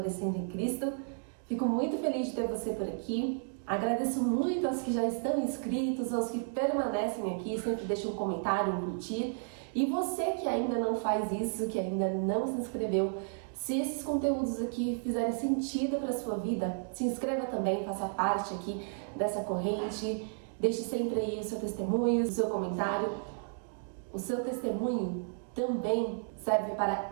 em Cristo. Fico muito feliz de ter você por aqui. Agradeço muito aos que já estão inscritos, aos que permanecem aqui, sempre deixam um comentário, um curtir. E você que ainda não faz isso, que ainda não se inscreveu, se esses conteúdos aqui fizerem sentido para a sua vida, se inscreva também, faça parte aqui dessa corrente, deixe sempre aí o seu testemunho, o seu comentário. O seu testemunho também serve para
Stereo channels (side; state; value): left; silent; digital silence